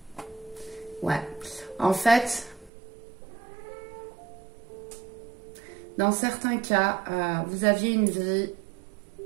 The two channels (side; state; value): left; drops out; at 2.7 s